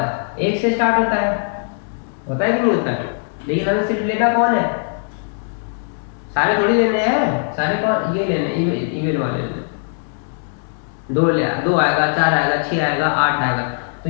1 से स्टार्ट होता है कि नहीं होता है, लेकिन हमें सिर्फ लेना कौन है, सारे थोड़ी लेने हैं, सारे कौन ये लेने इवन वाले लेने। 2 आएगा, 4 आएगा, 6 आएगा, 8 आएगा,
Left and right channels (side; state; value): right; silent; 66 dB below the other